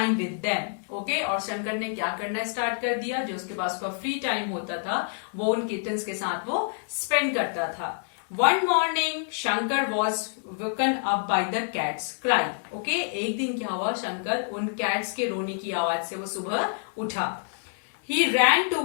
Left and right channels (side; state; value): right; silent; 56 dB below the other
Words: with them. Okay, और शंकर ने क्या करना स्टार्ट कर दिया, जो उसके पास का फ्री टाइम होता था वो उन किटन्स के साथ वो स्पेंड करता था। One morning, Shankar was woken up by the cat's cry. Okay, एक दिन क्या हुआ, शंकर उन कैट्स के रोने की आवाज से वो सुबह उठा। He ran